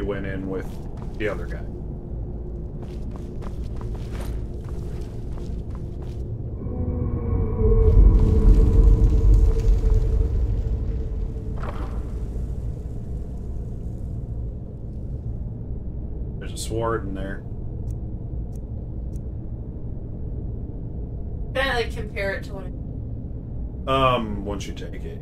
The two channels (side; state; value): both; identical; correlation 1.00